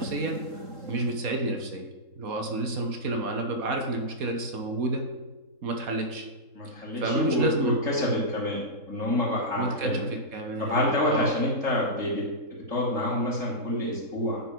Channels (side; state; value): left; late; 4.2 ms